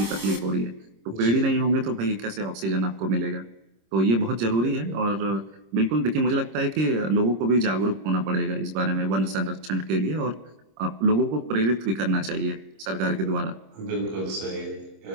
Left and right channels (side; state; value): left; late; 26 ms